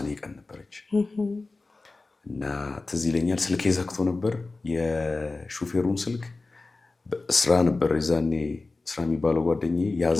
ቀን ነበረች። እና ትዝ ይለኛል ስልኬ ዘግቶ ነበር። የሹፌሩን ስልክ ስራ ነበር የዛኔ ስራ የሚባለው ጓደኛዬ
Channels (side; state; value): right; quieter; 3.5 dB